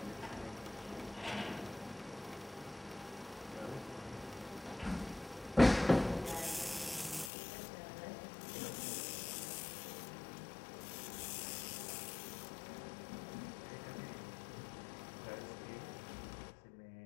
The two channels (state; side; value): drops out; right; at 7.3 s